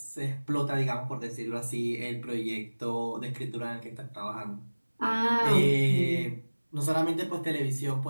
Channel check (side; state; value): both; inverted; correlation -1.00